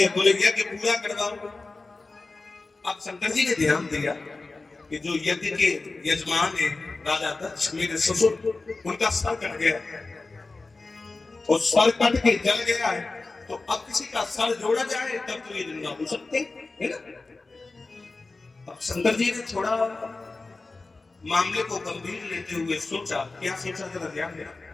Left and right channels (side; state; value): right; quieter; 3.5 dB